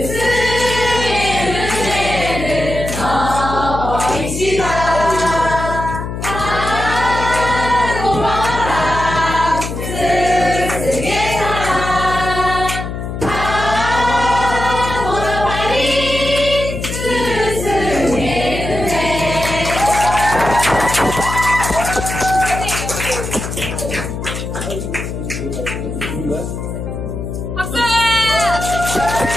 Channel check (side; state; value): left; noise; hum, 6 dB below the sound